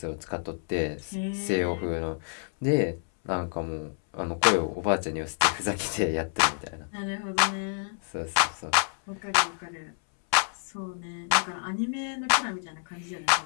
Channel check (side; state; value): right; silent; 59 dB below the other